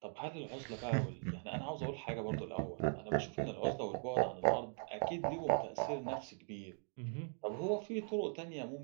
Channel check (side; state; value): left; silent; 51 dB below the other